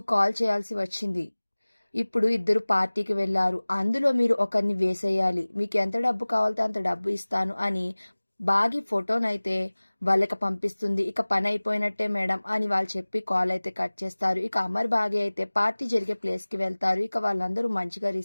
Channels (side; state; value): both; inverted; correlation -1.00